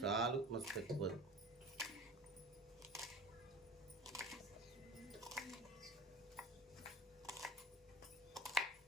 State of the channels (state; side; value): normal; both; correlation 0.36